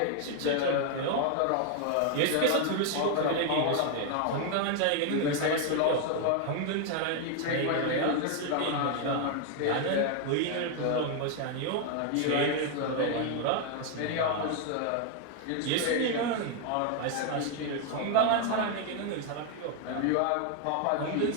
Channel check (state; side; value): different; both; correlation 0.00